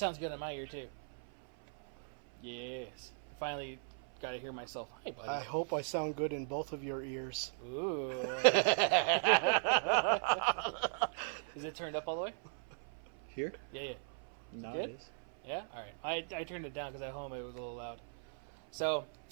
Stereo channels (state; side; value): silent; left; 52 dB below the other